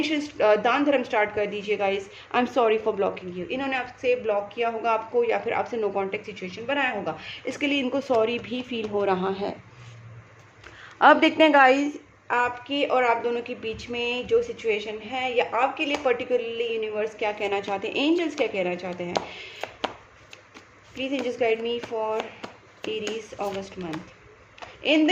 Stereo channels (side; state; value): both; identical; correlation 1.00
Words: दान धर्म स्टार्ट कर दीजिए। Guys I am sorry for blocking you, इन्होंने आपसे ब्लॉक किया होगा आपको या फिर आपसे नो कॉन्टेक्ट सिचुएशन बनाया होगा, इसके लिए इनको सॉरी भी फील हो रहा है। अब देखते हैं गाइस आपकी और आप दोनों के बीच में जो सिचुएशन है या आपके लिए पर्टिकुलरली यूनिवर्स क्या कहना चाहते हैं, एंजल्स क्या कहना चाहते हैं। Please angels guide me for Aries August month. In the